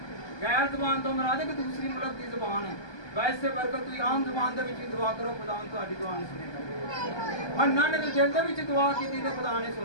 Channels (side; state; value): right; late; 1.2 ms